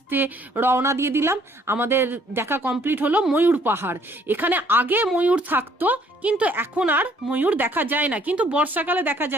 রওনা দিয়ে দিলাম। আমাদের দেখা কমপ্লিট হলো ময়ূর পাহাড়। এখানে আগে ময়ূর থাকতো কিন্তু এখন আর ময়ূর দেখা যায় না, কিন্তু বর্ষাকালে দেখা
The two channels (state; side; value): normal; both; correlation 0.62